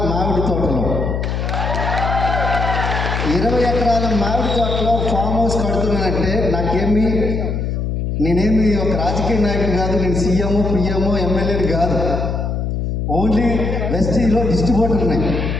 మామిడి తోటలో 20 ఎకరాల మామిడి తోటలో ఫామ్ హౌస్ కడుతున్నానంటే నేనేమి ఒక రాజకీయ నాయకుడు కాదు, నేను సీఎం, పిఎం, ఎమ్మెల్యేని కాదు. ఓన్లీ వెస్టీలో డిస్ట్రిబ్యూటర్ ఉన్నాయి.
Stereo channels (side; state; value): left; noise; hum, 1 dB below the sound